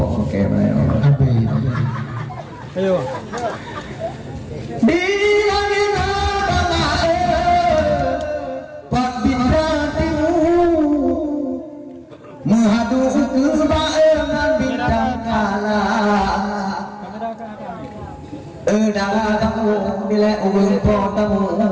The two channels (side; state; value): both; identical; correlation 1.00